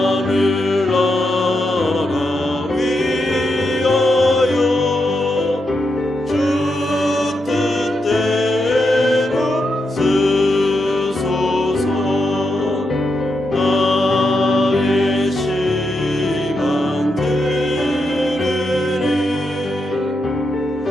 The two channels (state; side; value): normal; both; correlation 0.84